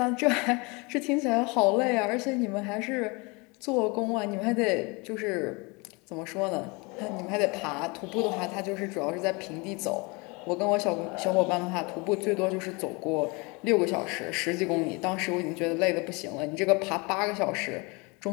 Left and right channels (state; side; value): quieter; right; 28.0 dB